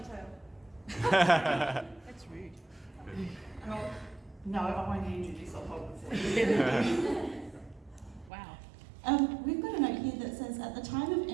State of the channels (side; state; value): left; drops out; at 8.3 s